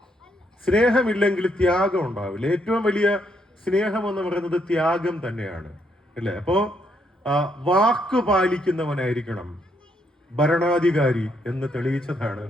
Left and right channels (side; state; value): both; normal; correlation 0.74